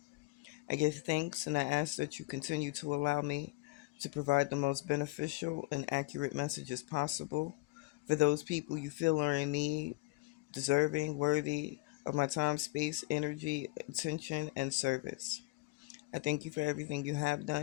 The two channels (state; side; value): quieter; right; 22.6 dB